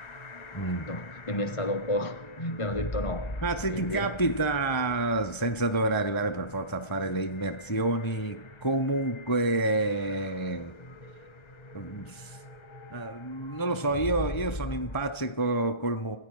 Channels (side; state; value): right; late; 1.3 ms